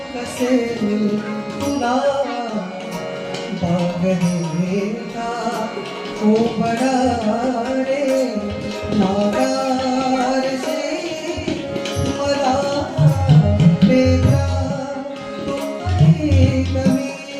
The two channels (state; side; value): identical; both; correlation 1.00